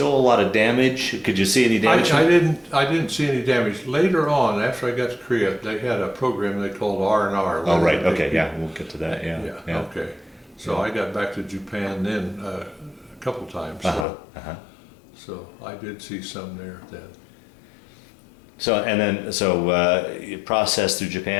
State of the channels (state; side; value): drops out; right; at 14.1 s